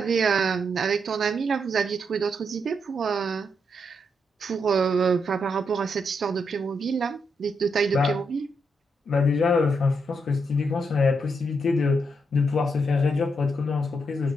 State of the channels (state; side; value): normal; both; correlation 0.80